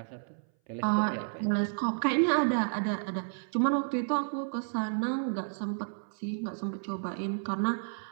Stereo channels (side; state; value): left; silent; 57 dB below the other